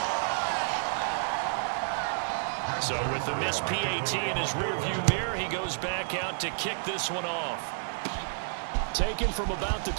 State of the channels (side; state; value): left; silent; digital silence